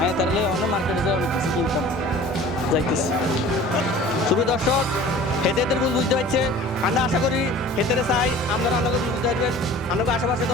তাহলে অনেক মার্কেটে যাই অনেক কিছু কিনতাম যাইতেছি শুভ দর্শক হেতেদের ভুল বুঝতে পারছে আমরা আশা করি হেতেরে চাই আপনারা আপনাকে ভুল বুঝতে পারবেন আপনাকে আশেপাশে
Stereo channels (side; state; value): both; normal; correlation 0.44